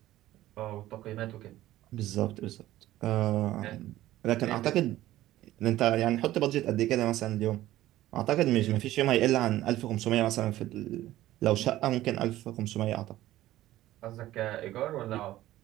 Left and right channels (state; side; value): quieter; left; 15.0 dB